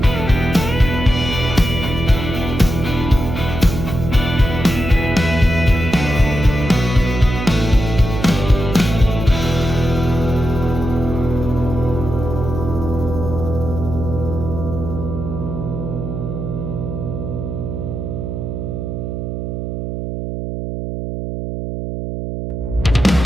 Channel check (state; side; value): noise; right; hum, 5 dB below the sound